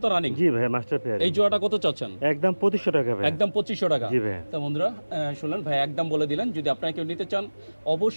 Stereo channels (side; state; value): both; inverted; correlation -1.00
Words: তো রানিং। জি ভাই, মাস্টার পেজ। এই জোড়াটা কত চাচ্ছেন? একদম 2500 টাকা ভাই। একদম 2500 টাকা। জি ভাই। তো বন্ধুরা শুনলেন ভাই একদম বলে দিলেন। যদি আপনারা কেউ নিতে চান